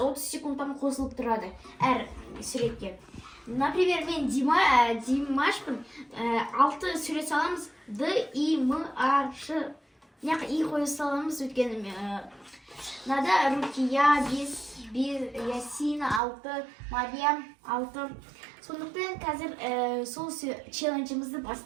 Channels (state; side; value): drops out; left; at 16.2 s